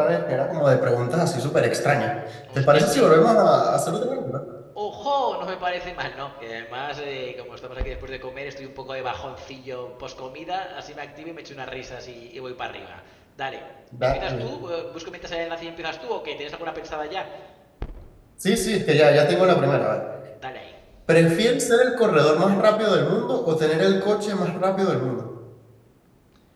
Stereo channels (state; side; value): identical; both; correlation 1.00